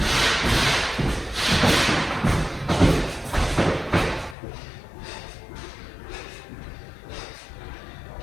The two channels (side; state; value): right; drops out; at 4.4 s